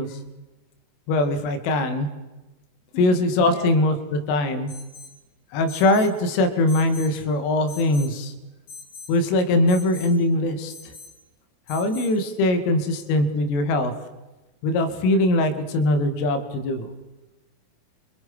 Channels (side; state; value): right; late; 27 ms